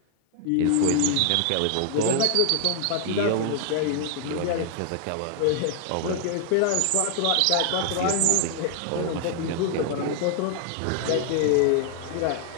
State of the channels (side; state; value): both; different; correlation 0.00